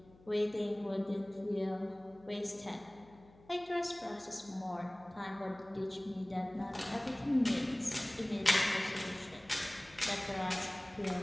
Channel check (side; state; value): left; noise; hum, 25 dB below the sound